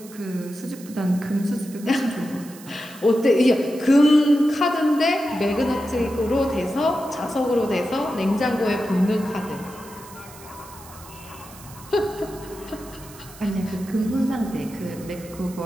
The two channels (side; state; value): right; noise; hiss, 19 dB below the sound